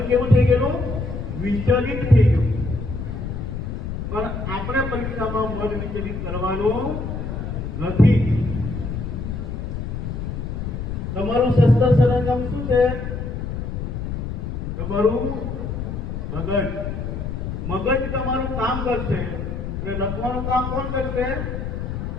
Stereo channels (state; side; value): noise; left; rumble, 5 dB below the sound